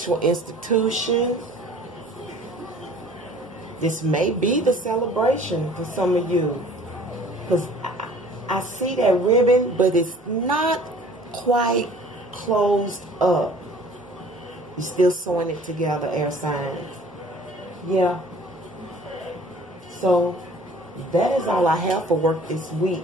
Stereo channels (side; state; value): both; normal; correlation 0.50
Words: institution. This may be the celebration for some of you. Because I see that ribbon, but it's not quite closed up. You're still sewing it together, air signs. Yeah. So, that is all I have for work this week.